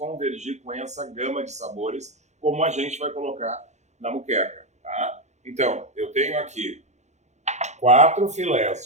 com essa gama de sabores, como a gente vai colocar na moqueca, tá? Então, eu tenho aqui 4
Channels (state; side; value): late; left; 0.33 ms